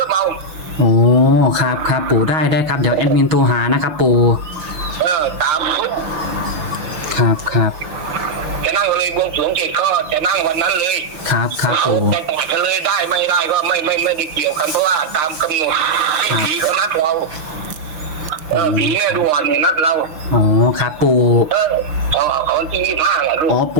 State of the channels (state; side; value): late; left; 6.2 ms